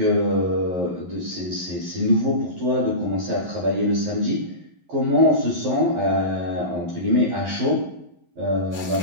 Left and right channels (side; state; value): left; late; 11 ms